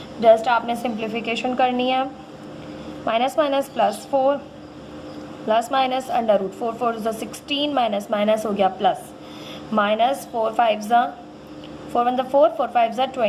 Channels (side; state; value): both; identical; correlation 1.00